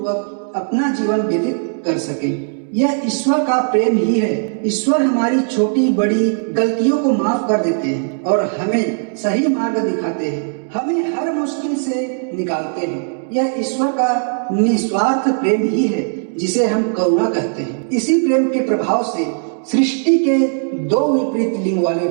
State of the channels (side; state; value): left; silent; digital silence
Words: अपना जीवन व्यतीत कर सकें। यह ईश्वर का प्रेम ही है। ईश्वर हमारी छोटी बड़ी गलतियों को माफ कर देते हैं और हमें सही मार्ग दिखाते हैं, हमें हर मुश्किल से निकालते हैं। यह ईश्वर का निस्वार्थ प्रेम ही है, जिसे हम करुणा कहते हैं। इसी प्रेम के प्रभाव से सृष्टि के दो विपरीत लिंग वाले